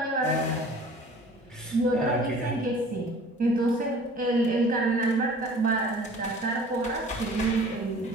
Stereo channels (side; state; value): both; normal; correlation 0.47